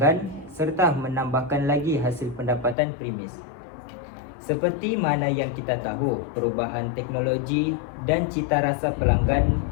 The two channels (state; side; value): drops out; right; at 2.8 s